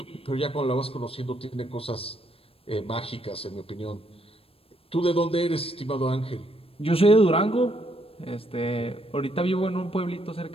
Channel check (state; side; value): late; right; 0.28 ms